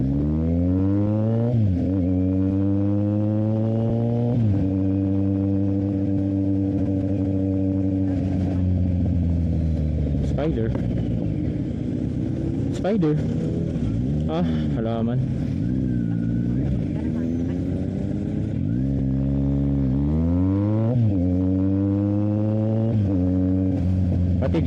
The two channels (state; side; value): identical; both; correlation 1.00